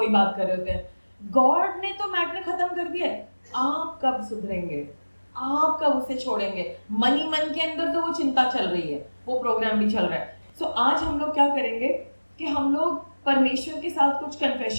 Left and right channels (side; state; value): both; inverted; correlation -1.00